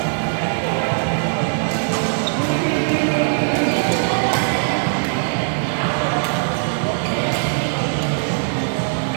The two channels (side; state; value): left; silent; digital silence